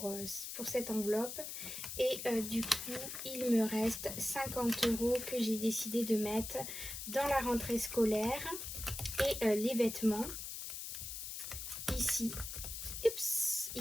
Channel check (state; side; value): noise; left; hiss, 7 dB below the sound